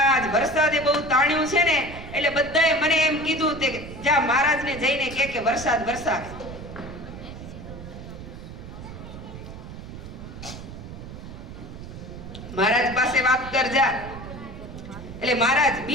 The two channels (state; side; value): noise; right; rumble, 12 dB below the sound